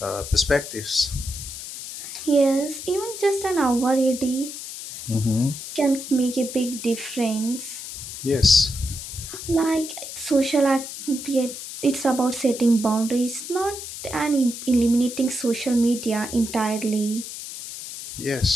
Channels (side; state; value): left; noise; hiss, 10 dB below the sound